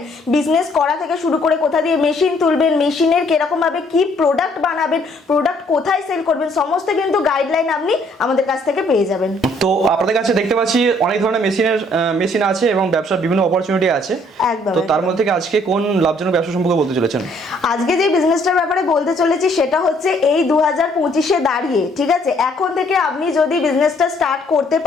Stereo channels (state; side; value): normal; both; correlation 0.64